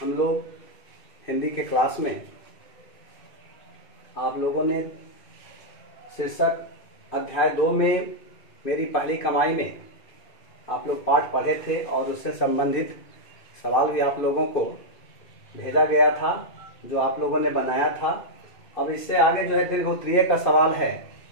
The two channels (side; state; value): right; late; 2.5 ms